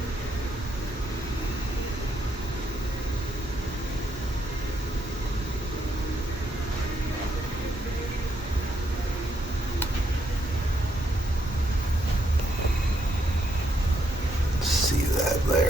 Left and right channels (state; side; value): normal; both; correlation 0.76